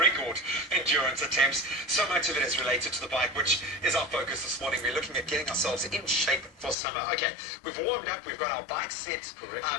endurance attempts. So much of it is related to the bike, which is our focus this morning. We're looking at getting ourselves in shape for summer. Okay, we've warmed up, we've got our bike set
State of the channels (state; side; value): drops out; right; at 6.8 s